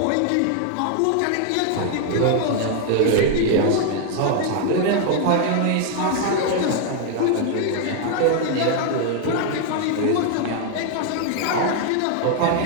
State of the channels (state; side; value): different; both; correlation 0.00